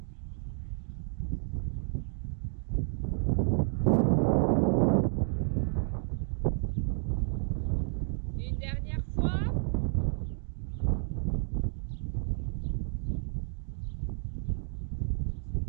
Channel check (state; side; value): silent; left; digital silence